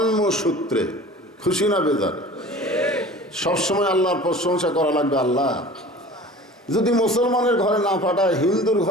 খুশি না বেজার? সবসময় আল্লাহর প্রশংসা করা লাগবে। আল্লাহ যদি মুসলমানের ঘরে না পাঠায়, হিন্দুর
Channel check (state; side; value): normal; both; correlation 0.41